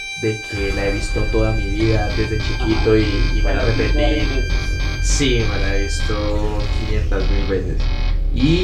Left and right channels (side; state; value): both; identical; correlation 1.00